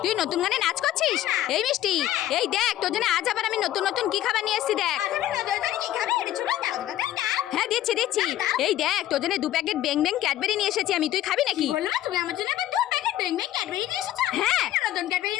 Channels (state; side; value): quieter; right; 13.4 dB